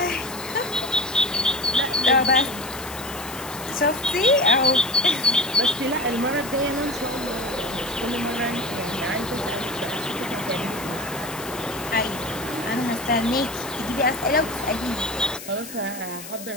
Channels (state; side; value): noise; left; hiss, 12 dB below the sound